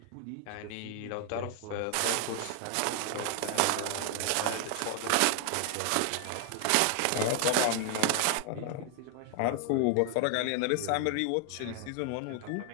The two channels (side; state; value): both; different; correlation 0.00